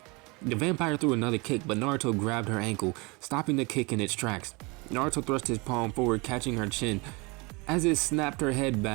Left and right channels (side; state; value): left; quieter; 27.2 dB